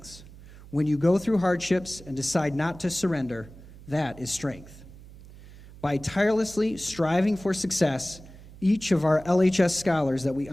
When you go through hardships and decide not to surrender, that is strength." By tirelessly striving for success, each of our LHS scholars that we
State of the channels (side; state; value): right; noise; hum, 19 dB below the sound